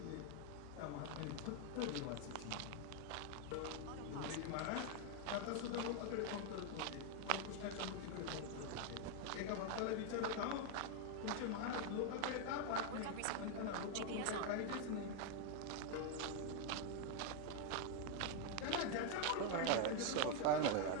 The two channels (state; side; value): different; both; correlation 0.01